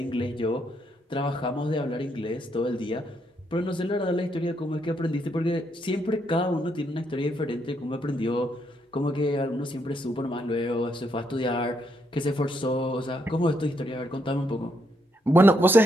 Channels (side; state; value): both; normal; correlation 0.76